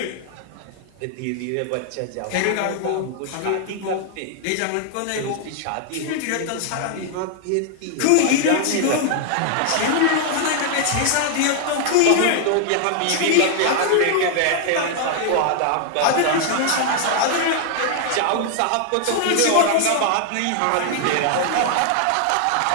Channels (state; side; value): different; both; correlation 0.00